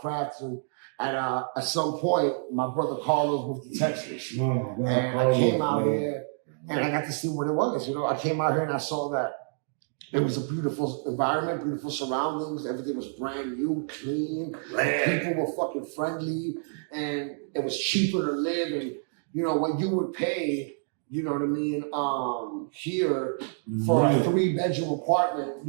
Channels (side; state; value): left; silent; digital silence